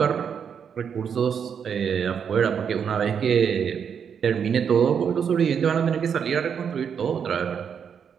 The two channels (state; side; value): quieter; left; 7.3 dB